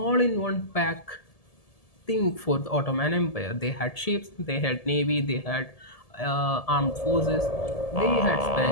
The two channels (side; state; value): right; late; 1.7 ms